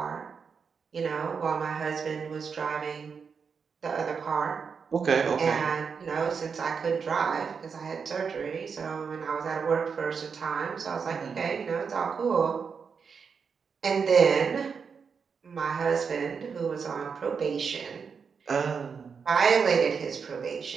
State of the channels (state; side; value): quieter; left; 5.9 dB